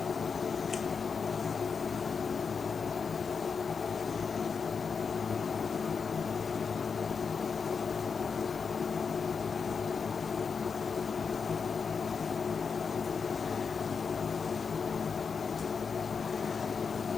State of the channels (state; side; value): quieter; right; 5.7 dB